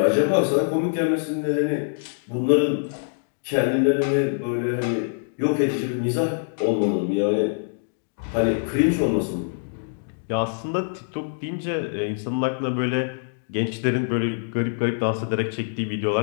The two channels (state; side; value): silent; right; digital silence